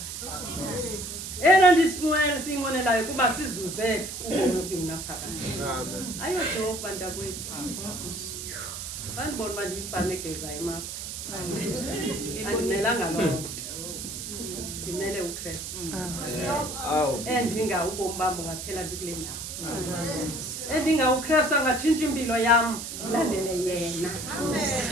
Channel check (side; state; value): right; noise; hiss, 7 dB below the sound